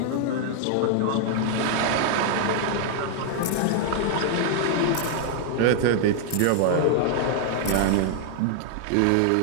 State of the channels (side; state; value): both; different; correlation 0.00